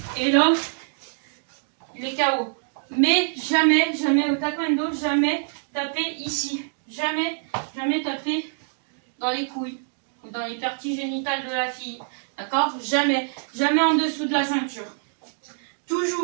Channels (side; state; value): left; silent; digital silence